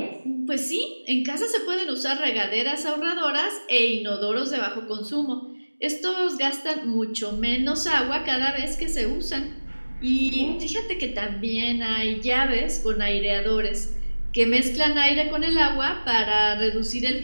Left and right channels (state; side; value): inverted; both; correlation -1.00